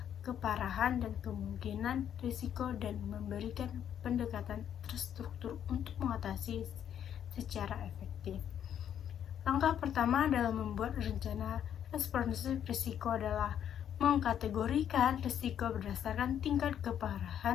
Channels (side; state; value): right; quieter; 9.5 dB